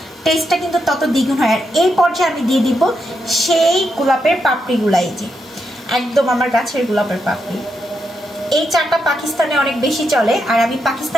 টেস্টটা কিন্তু তত দ্বিগুণ হয়। আর এই পর্যায়ে আমি দিয়ে দিব সেই গোলাপের পাপড়িগুলা, এই যে একদম আমার গাছের গোলাপের পাপড়ি। এই চাটা পাকিস্তানে অনেক বেশি চলে, আর আমি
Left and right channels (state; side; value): normal; both; correlation 0.82